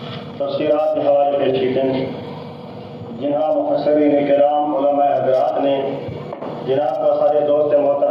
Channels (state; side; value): identical; both; correlation 1.00